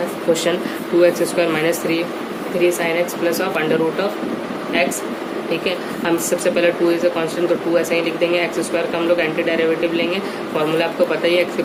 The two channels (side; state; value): both; identical; correlation 1.00